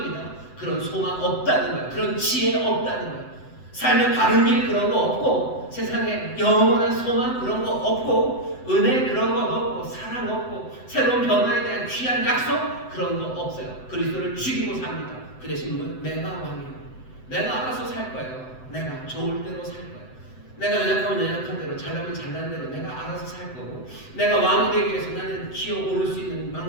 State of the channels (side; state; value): right; late; 7.9 ms